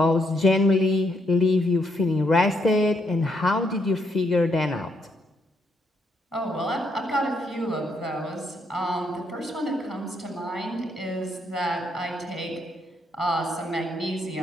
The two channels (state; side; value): normal; both; correlation 0.75